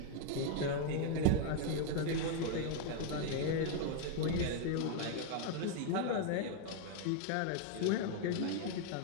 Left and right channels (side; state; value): both; different; correlation 0.00